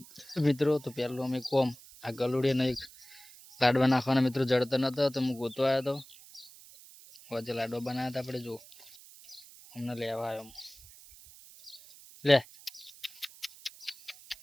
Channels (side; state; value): right; noise; hiss, 20 dB below the sound